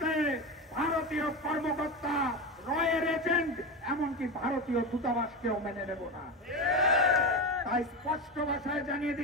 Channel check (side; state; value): both; normal; correlation 0.19